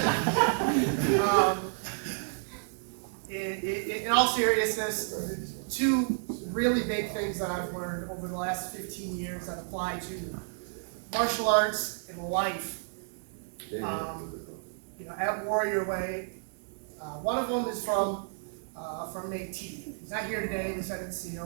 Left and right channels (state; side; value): silent; left; digital silence